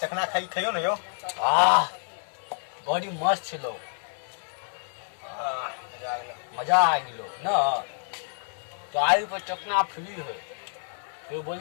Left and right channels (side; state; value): right; silent; digital silence